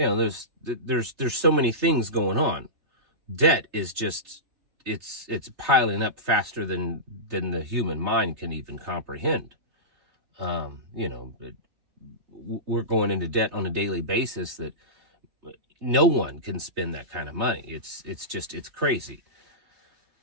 so many things going on. Debt is just, it's piling up faster than the human mind can even comprehend. We're going into debt on a daily basis that no one can spend that kind of money. It's crazy.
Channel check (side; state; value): left; late; 3.3 ms